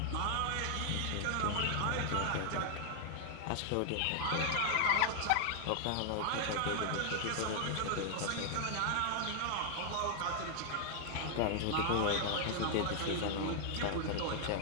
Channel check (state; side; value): different; both; correlation 0.00